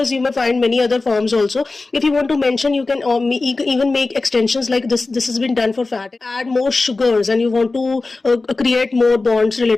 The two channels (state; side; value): quieter; right; 3.5 dB